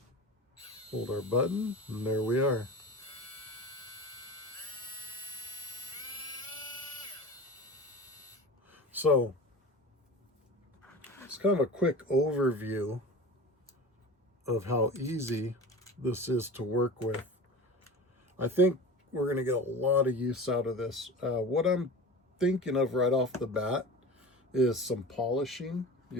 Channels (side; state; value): both; normal; correlation 0.33